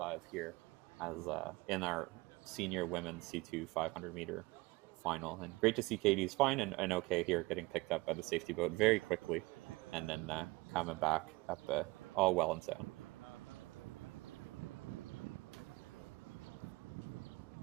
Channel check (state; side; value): quieter; left; 23.0 dB